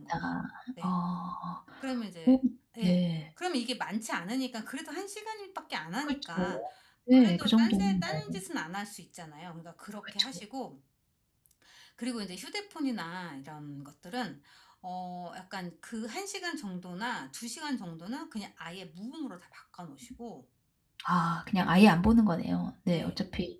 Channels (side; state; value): both; identical; correlation 1.00